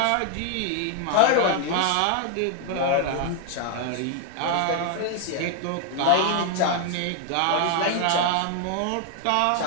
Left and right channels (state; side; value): different; both; correlation 0.00